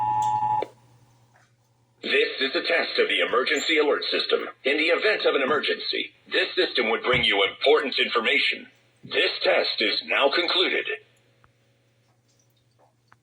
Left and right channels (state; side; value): identical; both; correlation 1.00